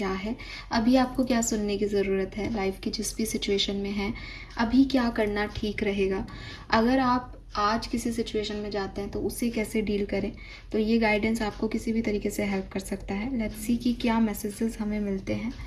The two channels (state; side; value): identical; both; correlation 1.00